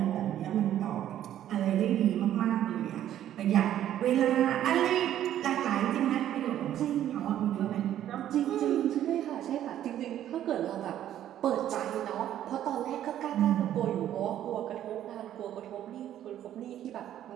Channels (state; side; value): quieter; left; 11.5 dB